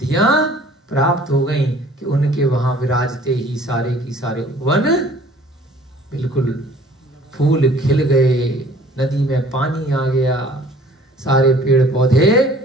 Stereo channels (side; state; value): both; normal; correlation 0.52